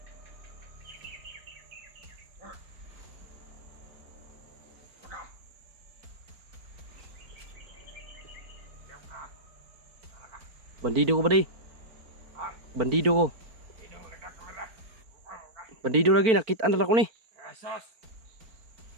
Bandido ko ba di? Bandido ko. Bandido lagi, nakitaan na ako ni.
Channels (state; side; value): late; left; 4.4 ms